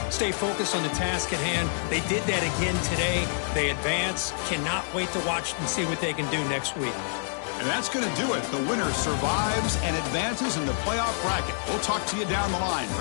stay focused on the task at hand. They did that again today. They advance. Cannot wait to watch and see what they can do next week. And that's going to do it. The winner survives and advances in the playoff bracket. We'll talk to you down the line.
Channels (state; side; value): silent; right; 55 dB below the other